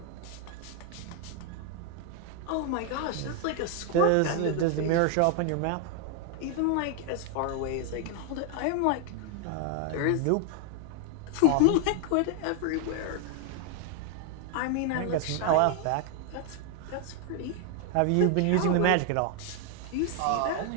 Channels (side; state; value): both; different; correlation 0.00